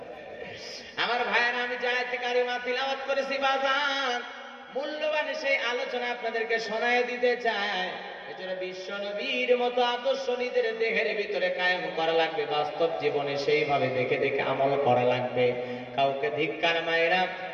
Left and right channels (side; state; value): both; identical; correlation 1.00